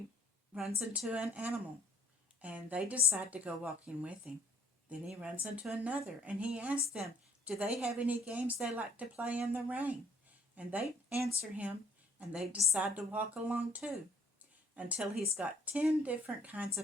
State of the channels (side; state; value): both; normal; correlation 0.60